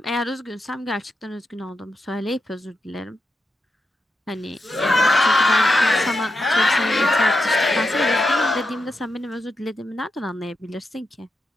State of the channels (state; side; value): normal; both; correlation 0.86